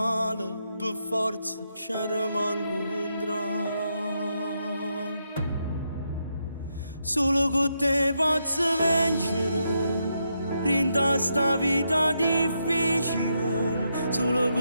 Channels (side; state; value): both; inverted; correlation -0.82